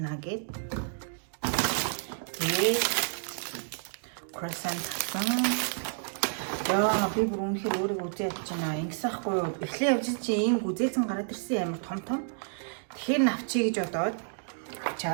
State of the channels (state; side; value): silent; left; digital silence